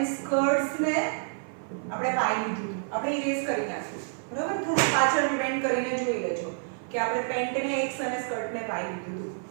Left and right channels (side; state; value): left; silent; 56 dB below the other